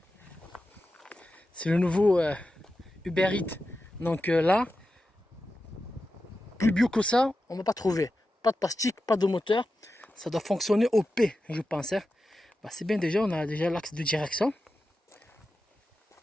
C'est le nouveau Uber Eats. Donc là, plus bio que ça, on ne va pas trouver. Pas de plastique, pas de moteur. Ça doit fonctionner au P, je pense. Hein. Bah, c'est bien déjà, on a déjà l'axe de direction.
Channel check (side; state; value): both; normal; correlation 0.91